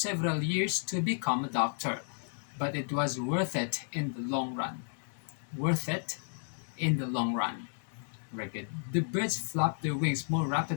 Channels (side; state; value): right; silent; digital silence